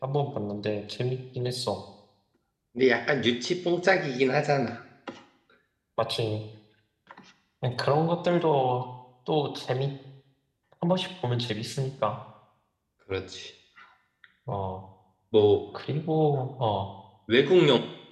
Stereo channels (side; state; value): both; identical; correlation 1.00